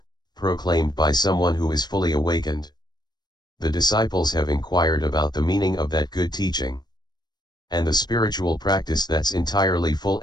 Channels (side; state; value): right; late; 0.20 ms